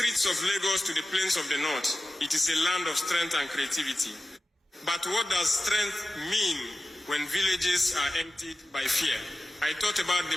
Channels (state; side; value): normal; both; correlation 0.94